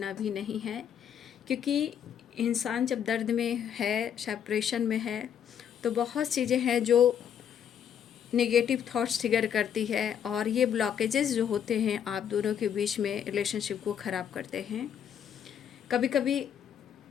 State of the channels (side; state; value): right; quieter; 8.7 dB